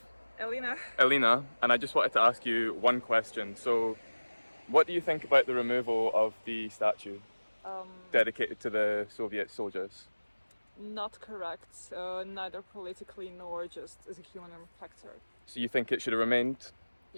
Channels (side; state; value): both; inverted; correlation -1.00